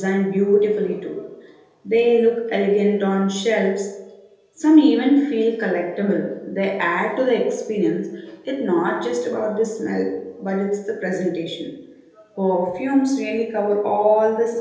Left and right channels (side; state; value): both; identical; correlation 1.00